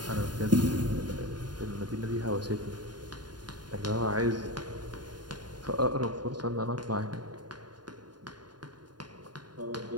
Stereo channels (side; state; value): left; late; 0.70 ms